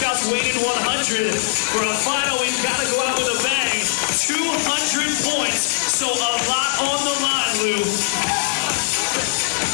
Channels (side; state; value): right; silent; 66 dB below the other